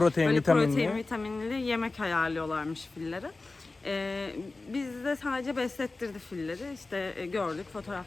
böyle vitaminli. protein, vitaminli yemek ayarlıyorlarmış filleri. Biz de sadece beslettirdi filleri. İşte gördük,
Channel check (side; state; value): right; quieter; 3.4 dB